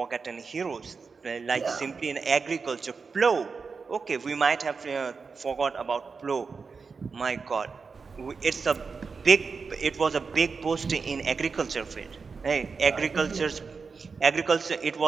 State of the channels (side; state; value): left; quieter; 5.0 dB